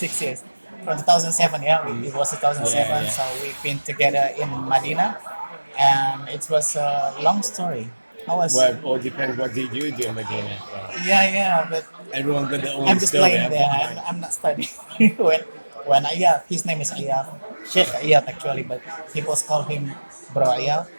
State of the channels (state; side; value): inverted; both; correlation -1.00